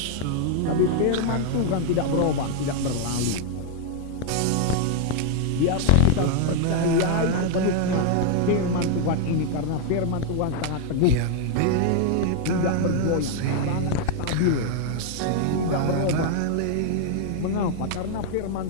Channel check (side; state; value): both; different; correlation 0.00